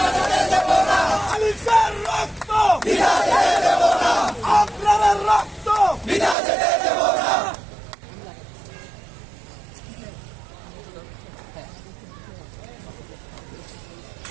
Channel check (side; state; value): left; drops out; at 6.4 s